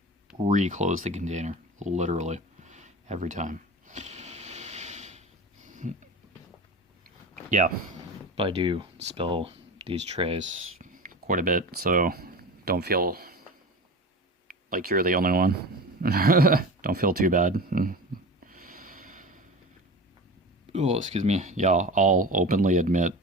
re-close the container. Literally. Every time. Yeah, but I do spill these trays quite a bit, so don't feel like you're the only one. Don't feel too bad. Oh, excuse me. Yeah, I'll openly admit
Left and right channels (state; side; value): normal; both; correlation 0.31